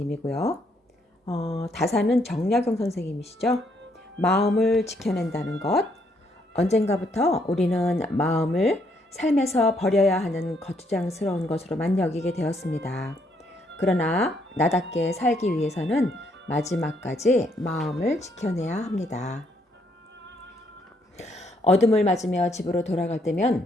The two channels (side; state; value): both; normal; correlation 0.72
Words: 다산은 정약용 선생님이시죠. 마음을 지켜낸다는 것. 언젠가부터 우리는 마음을 삶에서 버려야 하는 거추장스러운 것으로만 여기게 되었습니다. 그러나 나답게 살기 위해서는 마지막까지 마음을 지켜내야 합니다. 어둠을 맞으며 집으로 돌아갈